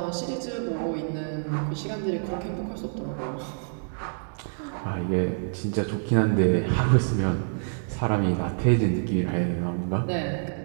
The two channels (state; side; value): silent; left; digital silence